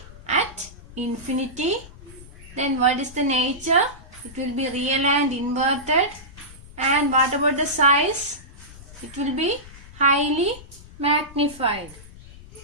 at infinity. Then what is the nature? It will be real and inverted. And what about the size? It will be highly magnified.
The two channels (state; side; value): noise; left; rumble, 19 dB below the sound